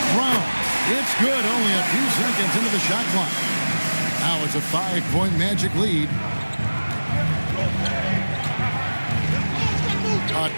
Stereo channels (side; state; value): both; inverted; correlation -1.00